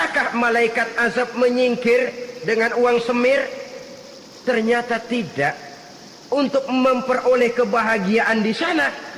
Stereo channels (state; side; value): identical; both; correlation 1.00